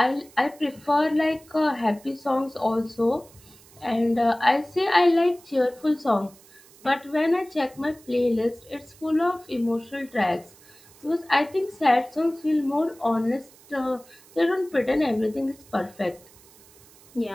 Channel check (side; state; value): right; noise; hiss, 25 dB below the sound